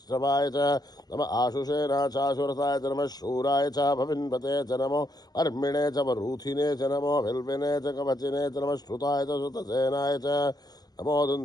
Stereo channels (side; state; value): right; late; 0.19 ms